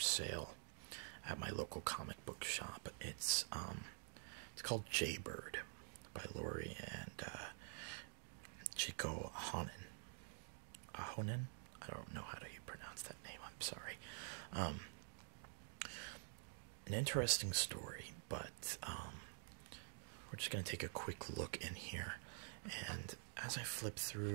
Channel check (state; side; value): silent; left; digital silence